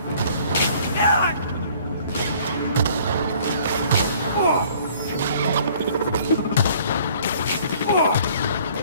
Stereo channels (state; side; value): inverted; both; correlation -0.56